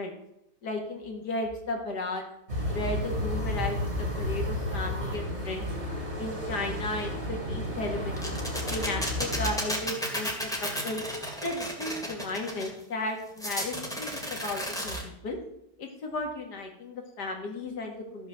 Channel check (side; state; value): both; normal; correlation 0.04